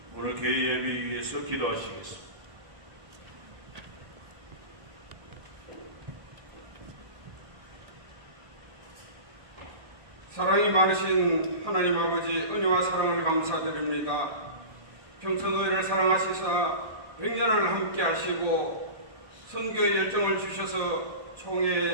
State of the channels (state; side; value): late; left; 1.7 ms